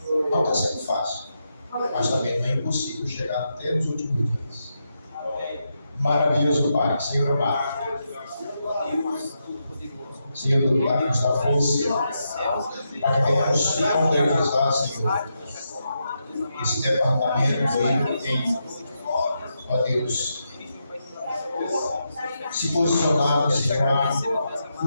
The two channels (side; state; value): both; inverted; correlation -0.84